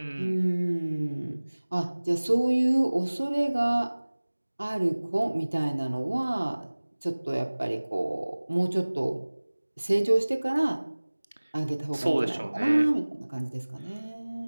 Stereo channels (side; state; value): both; inverted; correlation -1.00